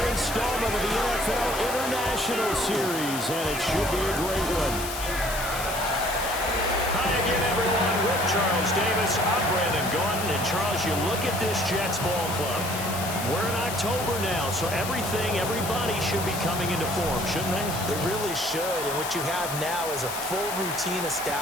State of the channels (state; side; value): noise; left; hiss, 7 dB below the sound